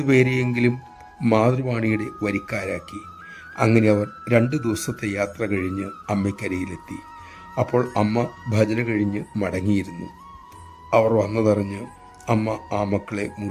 പേരെയെങ്കിലും മാതൃവാണിയുടെ വരിക്കാരാക്കി. അങ്ങനെ അവർ 2 ദിവസത്തെ യാത്ര കഴിഞ്ഞ് അമ്മയ്ക്കരിയിലെത്തി. അപ്പോൾ അമ്മ ഭജന കഴിഞ്ഞ് മടങ്ങിയിരുന്നു. അവർ വന്നതറിഞ്ഞ് അമ്മ ആ മക്കളെ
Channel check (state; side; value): identical; both; correlation 1.00